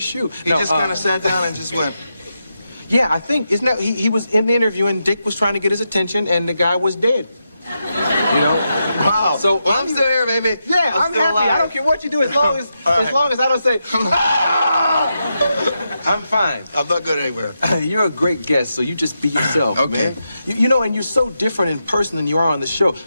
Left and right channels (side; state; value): both; inverted; correlation -0.85